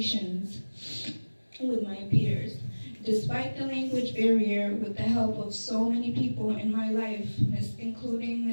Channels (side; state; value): both; inverted; correlation -1.00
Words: with my peers. Despite the language barrier, with the help of so many people in my life, including